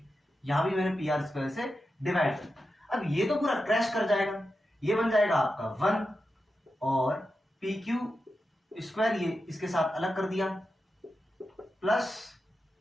यहां भी मैंने पी आर स्क्वायर से डिवाइड कर। अब ये तो पूरा क्रैश कर जाएगा, ये बन जाएगा आपका 1 और पी क्यू स्क्वायर ये इसके साथ अलग कर दिया प्लस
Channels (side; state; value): both; normal; correlation 0.90